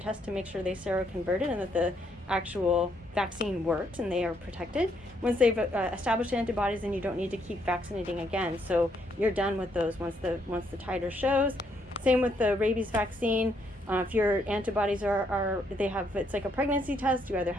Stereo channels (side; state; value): both; normal; correlation 0.73